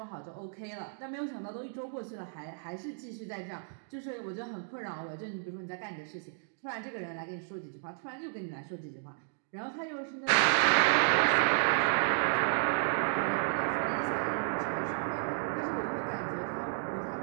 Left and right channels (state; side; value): silent; left; digital silence